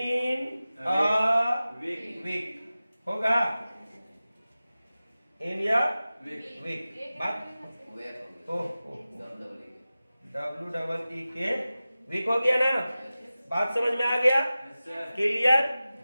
अ वीक होगा, इन या वीक। बात WEE के वीक हो गया ना। बात समझ में आ गया, क्लियर,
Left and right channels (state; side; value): inverted; both; correlation -0.96